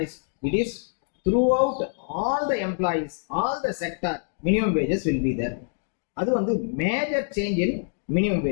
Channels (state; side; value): silent; right; digital silence